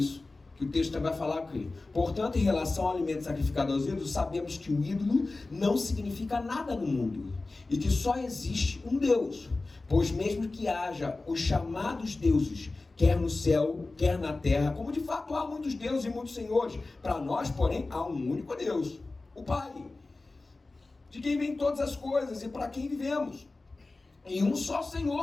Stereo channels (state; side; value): quieter; right; 3.3 dB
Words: que o texto vai falar aqui. Portanto, em relação ao alimento sacrificado aos ídolos, sabemos que o ídolo não significa nada no mundo e que só existe um Deus. Pois mesmo que haja os chamados deuses, quer no céu, quer na terra, como de fato há muitos deuses e muitos senhores, para nós, porém, há um único Deus, o Pai, de quem vêm todas as coisas e para quem vivemos, e um só